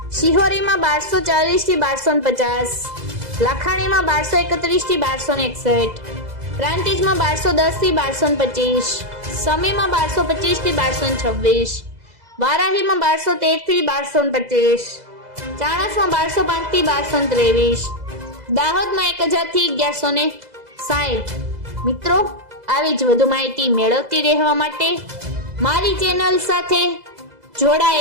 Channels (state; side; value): late; left; 2.0 ms